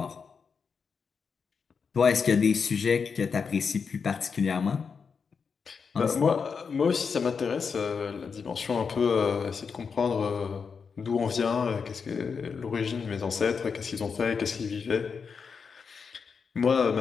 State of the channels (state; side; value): quieter; right; 5.8 dB